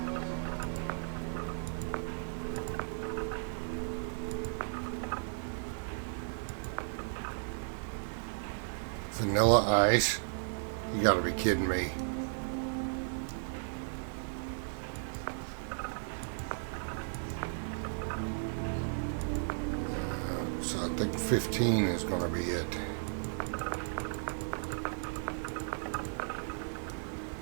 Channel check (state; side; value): silent; left; 54 dB below the other